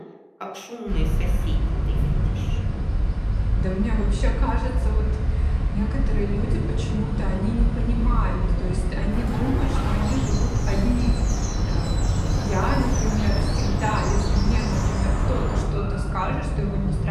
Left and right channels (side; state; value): both; identical; correlation 1.00